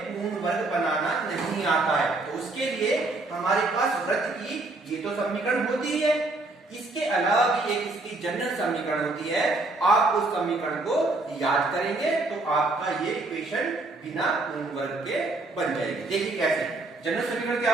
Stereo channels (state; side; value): quieter; left; 3.1 dB